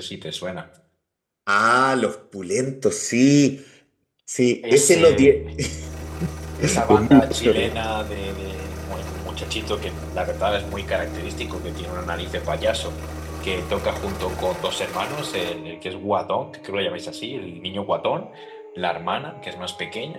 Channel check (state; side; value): identical; both; correlation 1.00